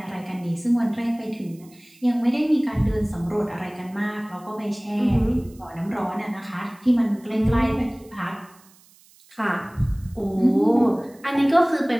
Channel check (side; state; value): right; noise; hiss, 28 dB below the sound